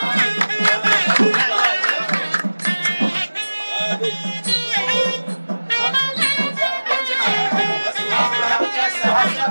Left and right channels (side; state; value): both; inverted; correlation -1.00